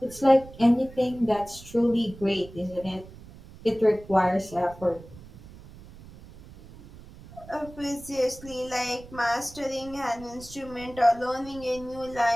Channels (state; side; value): noise; right; rumble, 18 dB below the sound